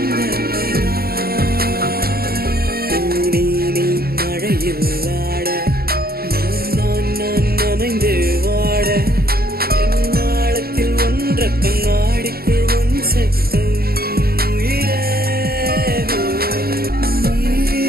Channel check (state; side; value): late; left; 0.44 ms